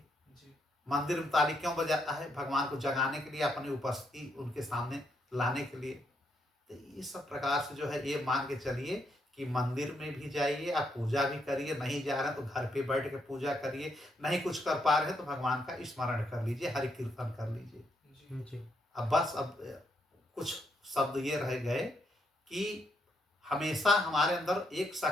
मंदिर में ताली क्यों बजाता है? भगवान को जगाने के लिए, अपनी उपस्थिति उनके सामने लाने के लिए। तो इस सब प्रकार से जो है ये मान के चलिए कि मंदिर में भी जाइए, आप पूजा भी करिए, नहीं जा रहे हैं तो घर पे बैठ के पूजा करिए, नहीं कुछ कर पा रहे हैं तो भगवान का स्मरण कर लीजिए, हरि कीर्तन कर लीजिए। जी अब बस अब कुछ शब्द ये रह गए कि हमेशा हमारे अंदर एक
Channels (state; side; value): normal; both; correlation 0.77